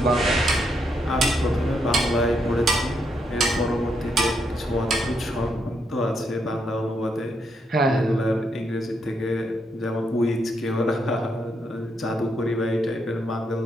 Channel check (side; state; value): both; normal; correlation 0.77